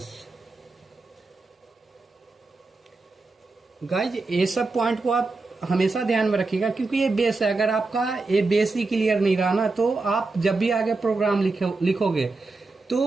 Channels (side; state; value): left; quieter; 3.6 dB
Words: Guys ये सब पॉइंट को आप हमेशा ध्यान में रखिएगा, क्योंकि ये बेस है। अगर आपका ये बेस ही क्लियर नहीं रहा ना, तो आप जब भी आगे प्रोग्राम लिखोगे